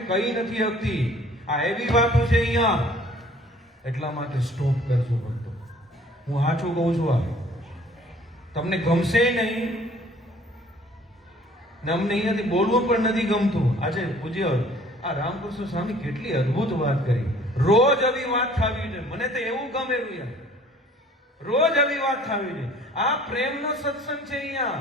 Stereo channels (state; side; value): normal; both; correlation 0.54